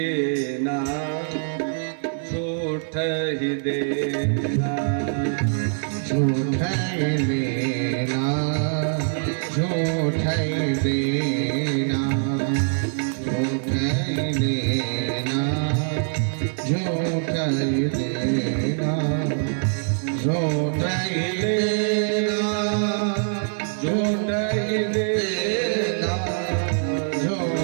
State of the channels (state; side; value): silent; left; digital silence